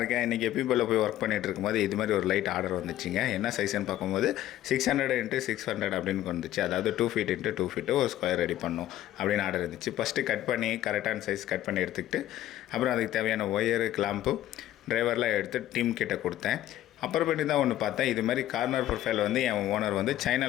இன்றைக்கி எப்பயும் போய் ஒர்க் பண்ணிகிட்டு இருக்கும்போது இது மாதிரி ஒரு லைட் ஆர்டர் வந்துச்சுங்க. என்ன சைஸ்ன்னு பார்க்கும்போது 600 x 600 அப்படின்னு வந்துச்சு. அதாவது 2 feet x 2 feet ஒரு ஸ்கொயர் ரெடி பண்ணும் அப்படின்னு ஆர்டர் இருந்துச்சு. ஃபஸ்ட்டு கட் பண்ணி கரெக்டான சைஸ் கட் பண்ணி எடுத்துக்கிட்டு அப்புறம் அதுக்கு தேவையான ஒயரு கிளாம்பு டிரைவர்லாம் எடுத்து டீம் கிட்ட கொடுத்தேன். அப்புறமேட்டு தான் ஒன்று பார்த்தேன், இது மாதிரி கார்னர் ப்ரொஃபைல் வந்து என் ஓனர் வந்து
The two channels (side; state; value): right; quieter; 13.4 dB